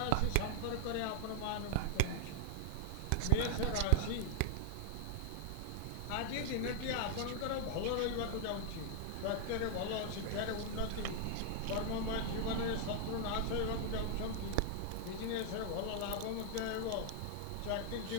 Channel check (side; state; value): both; different; correlation 0.00